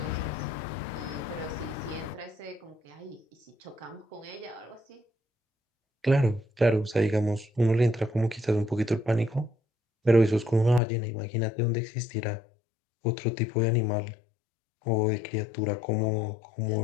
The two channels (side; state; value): right; drops out; at 10.8 s